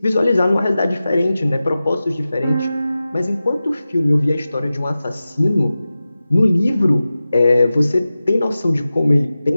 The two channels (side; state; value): both; inverted; correlation -0.95